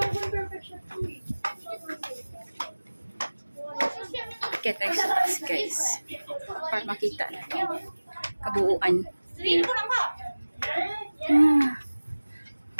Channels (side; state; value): both; inverted; correlation -1.00